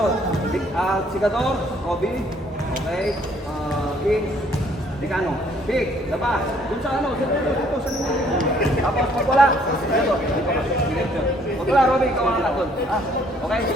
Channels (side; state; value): both; normal; correlation 0.63